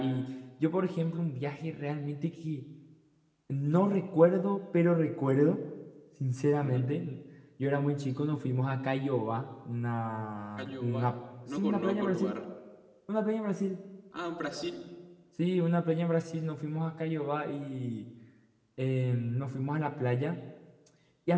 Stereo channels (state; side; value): identical; both; correlation 1.00